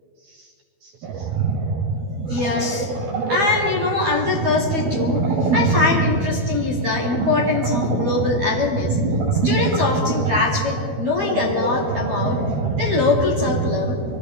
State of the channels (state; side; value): late; left; 12 ms